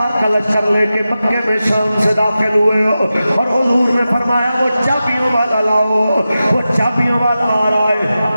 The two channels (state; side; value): inverted; both; correlation -0.93